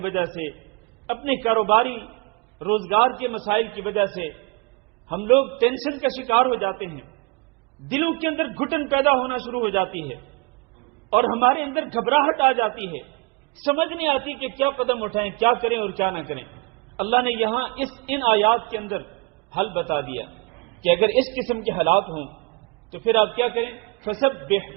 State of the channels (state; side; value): quieter; left; 29.3 dB